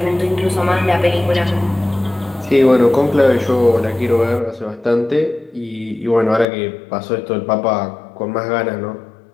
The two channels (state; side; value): drops out; right; at 6.5 s